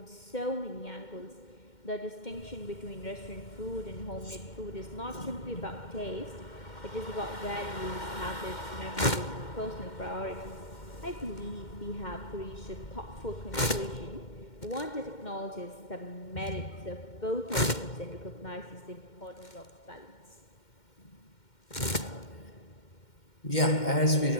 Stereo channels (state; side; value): late; right; 2.1 ms